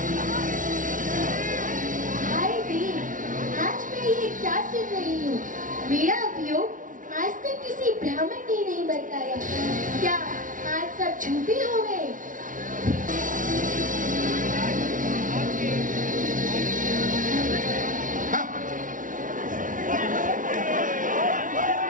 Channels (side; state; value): left; late; 0.38 ms